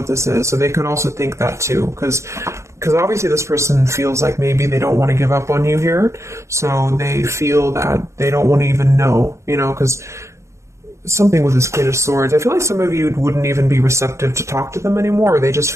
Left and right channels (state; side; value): late; left; 0.14 ms